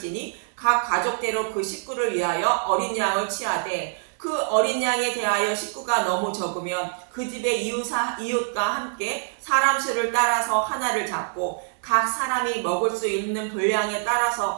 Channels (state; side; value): silent; left; 59 dB below the other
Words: 각 가족대로 그 식구를 위하여 어린 양을 취하되 그 어린 양에 대하여 식구가 너무 적으면 그 집의 이웃과 함께 사람 수를 따라서 하나를 잡고 각 사람이 먹을 수 있는 분량에